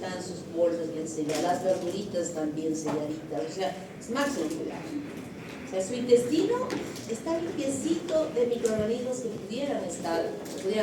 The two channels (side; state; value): both; identical; correlation 1.00